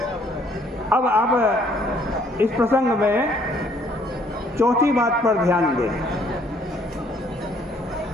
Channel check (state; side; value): normal; both; correlation 0.63